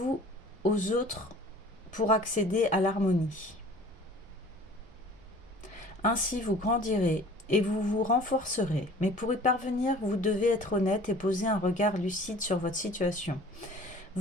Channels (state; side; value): normal; both; correlation 0.47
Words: aux autres pour accéder à l'harmonie. Ainsi vous grandirez et vous vous renforcerez. Mais pour y parvenir, vous devez être honnête et poser un regard lucide sur votre situation,